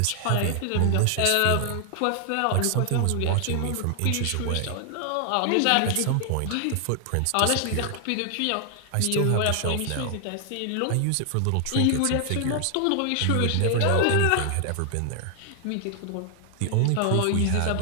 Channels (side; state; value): both; different; correlation 0.00